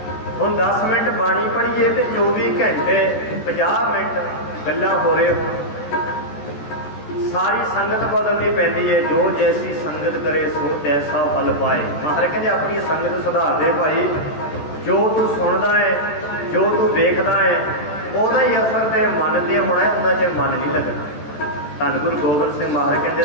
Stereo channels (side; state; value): right; late; 14 ms